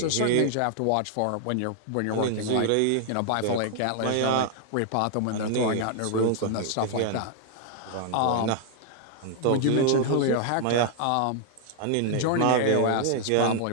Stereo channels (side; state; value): both; different; correlation -0.01